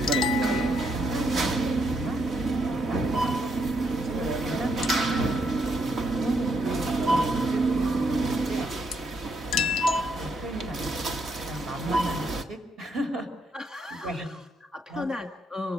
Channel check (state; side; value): normal; both; correlation 0.76